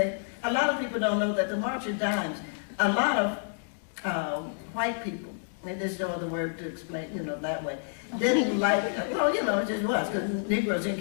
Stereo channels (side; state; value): right; silent; digital silence